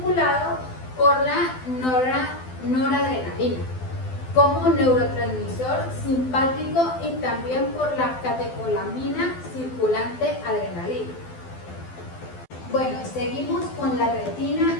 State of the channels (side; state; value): right; late; 12 ms